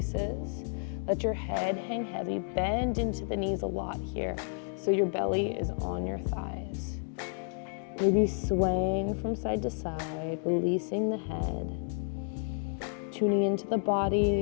Let your head hang heavy, bend into the knees a lot here, so your belly is on your thighs. Maybe swaying from side to side, releasing the head, tuning into the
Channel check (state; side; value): silent; right; 57 dB below the other